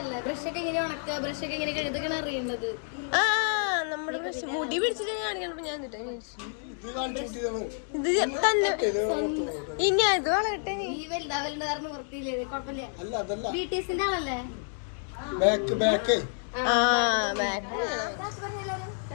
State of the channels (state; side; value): silent; right; 58 dB below the other